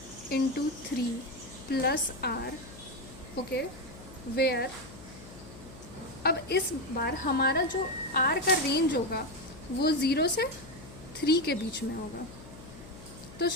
into 3 plus r. Okay, where अब इस बार हमारा जो r का रेंज होगा वो 0 से 3 के बीच में होगा. तो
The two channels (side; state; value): left; noise; hum, 17 dB below the sound